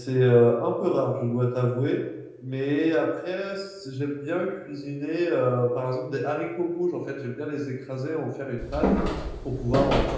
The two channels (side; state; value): both; identical; correlation 1.00